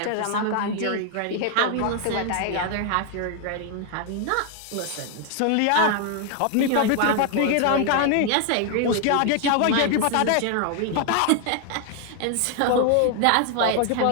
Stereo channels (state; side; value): different; both; correlation 0.00